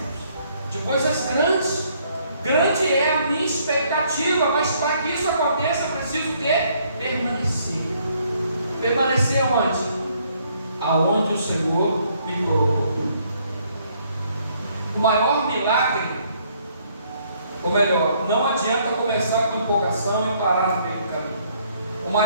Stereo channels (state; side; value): inverted; both; correlation -0.67